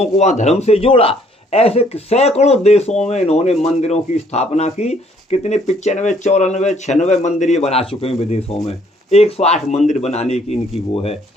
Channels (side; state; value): both; normal; correlation 0.64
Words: को वहाँ धर्म से जोड़ा। ऐसे सैकड़ों देशों में इन्होंने मंदिरों की स्थापना की। कितने 95, 94, 96 मंदिर ये बना चुके हैं विदेशों में। 108 मंदिर बनाने की इनकी वो है।